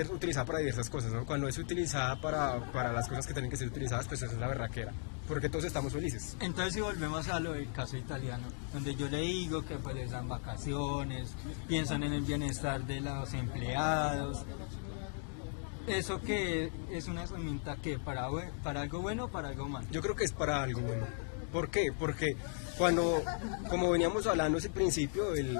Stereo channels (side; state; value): right; silent; 53 dB below the other